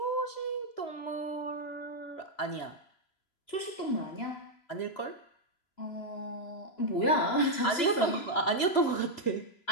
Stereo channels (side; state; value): right; late; 3.0 ms